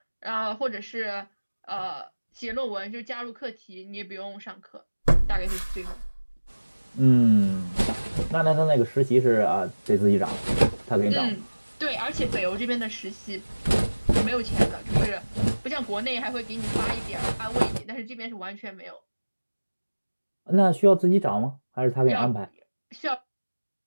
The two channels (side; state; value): both; inverted; correlation -1.00